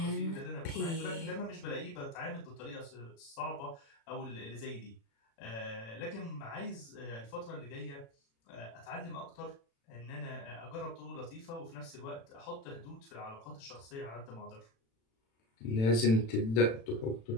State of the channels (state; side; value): late; right; 36 ms